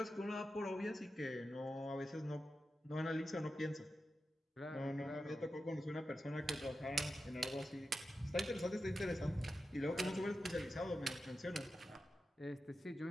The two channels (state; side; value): normal; both; correlation 0.91